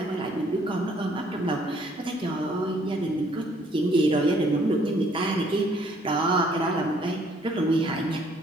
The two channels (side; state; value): both; normal; correlation 0.63